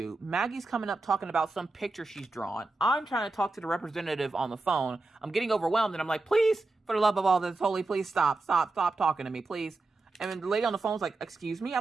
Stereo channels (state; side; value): quieter; left; 3.3 dB